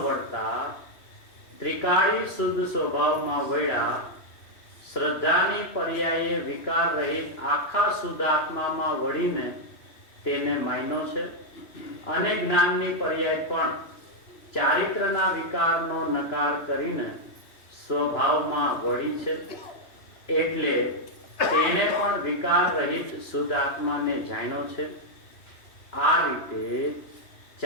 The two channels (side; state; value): right; late; 3.0 ms